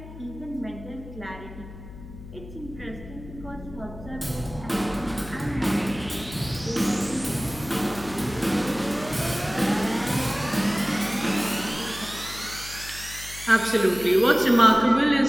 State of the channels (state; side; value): noise; left; hum, 14 dB below the sound